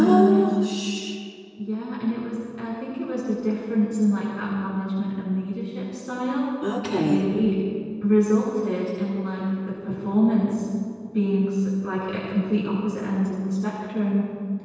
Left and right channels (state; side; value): identical; both; correlation 1.00